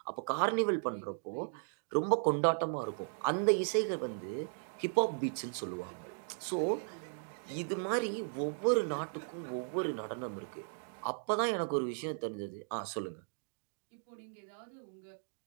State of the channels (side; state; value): left; silent; digital silence